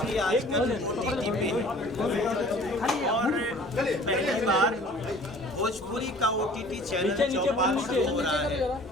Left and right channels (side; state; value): both; normal; correlation 0.49